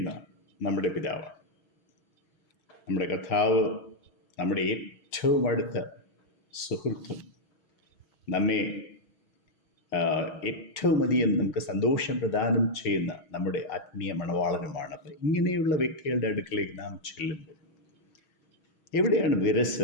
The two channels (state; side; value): late; right; 6.3 ms